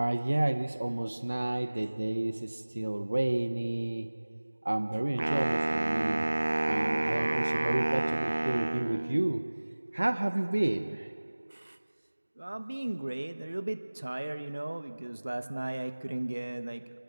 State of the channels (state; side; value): inverted; both; correlation -1.00